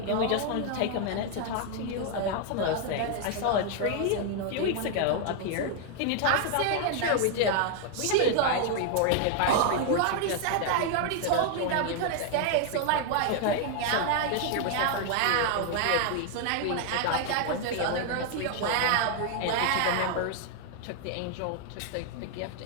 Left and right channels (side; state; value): both; different; correlation 0.00